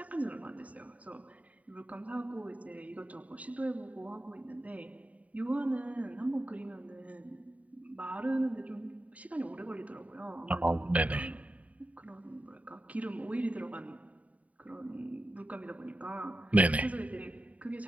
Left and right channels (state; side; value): late; left; 0.069 ms